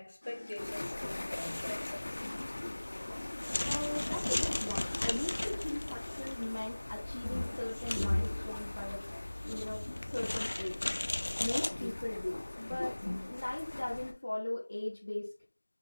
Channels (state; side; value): inverted; both; correlation -1.00